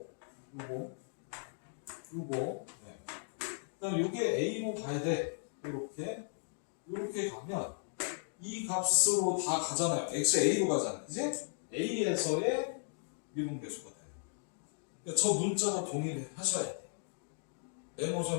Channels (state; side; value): silent; right; digital silence